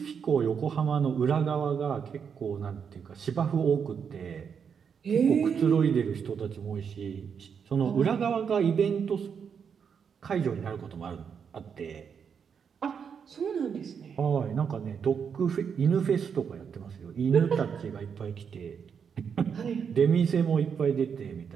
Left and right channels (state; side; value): quieter; left; 6.9 dB